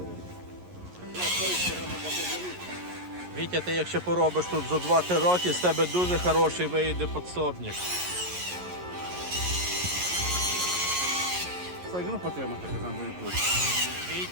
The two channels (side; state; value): left; late; 11 ms